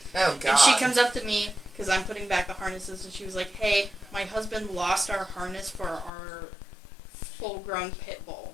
Oh god. And she comes up to me because I'm putting back the harnesses and she was like, "Hey, my husband lost our harness for our full-grown pit bull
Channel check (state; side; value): drops out; right; at 6.1 s